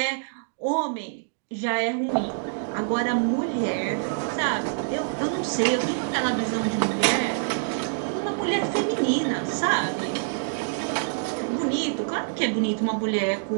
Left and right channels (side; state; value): left; silent; digital silence